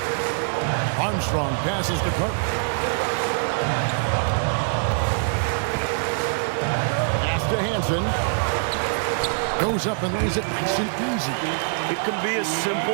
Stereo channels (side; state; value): left; silent; digital silence